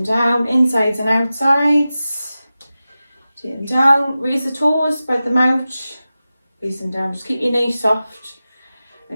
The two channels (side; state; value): both; inverted; correlation -0.95